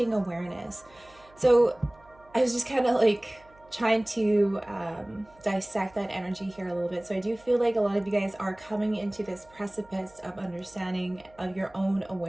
Awareness. So I was just kind of like trying to dissect that energy here a little bit. So I do feel like a lot of you guys are coming into this precipice of understanding of your own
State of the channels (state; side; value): noise; right; hum, 28 dB below the sound